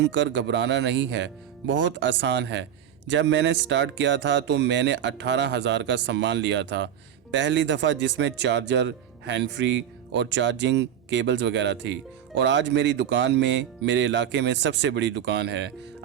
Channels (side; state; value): left; quieter; 9.7 dB